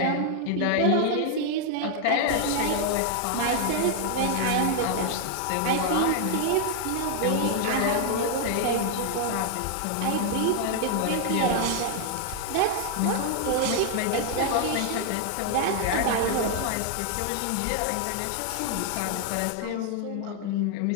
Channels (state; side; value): different; both; correlation 0.00